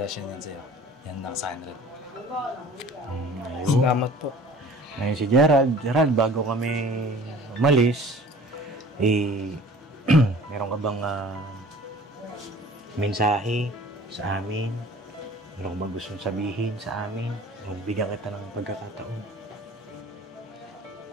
yan sa'yo. Yan lang sa akin, Ral. Salamat po. Ngayon si Gerald. Gerald, bago kami umalis, meron ka bang mensahe sa amin? Meron ka bang gustong sabihin sa amin? Bigyan kita ng pagkakataon.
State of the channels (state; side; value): normal; both; correlation 0.46